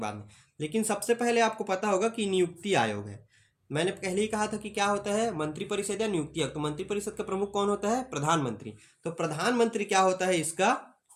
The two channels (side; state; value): both; identical; correlation 1.00